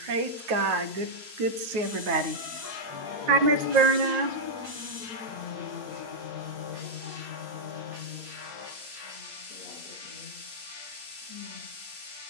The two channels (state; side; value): late; left; 9.3 ms